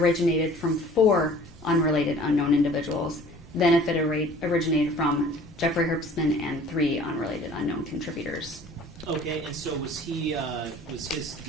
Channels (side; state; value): both; normal; correlation 0.49